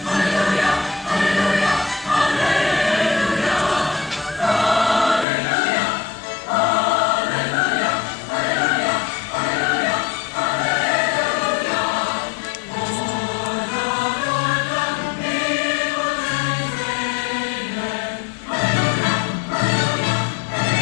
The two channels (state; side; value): drops out; right; at 5.2 s